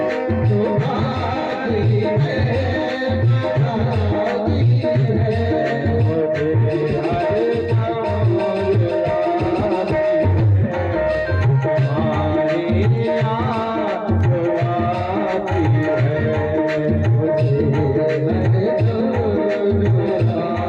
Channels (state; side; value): identical; both; correlation 1.00